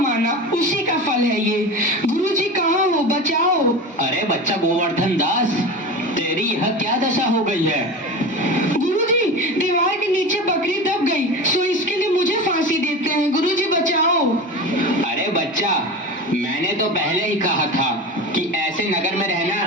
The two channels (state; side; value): normal; both; correlation 0.28